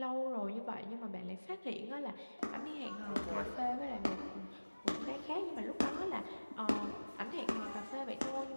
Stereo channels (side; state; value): both; inverted; correlation -1.00